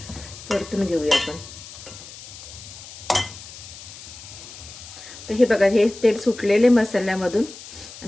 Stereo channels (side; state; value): left; noise; hiss, 15 dB below the sound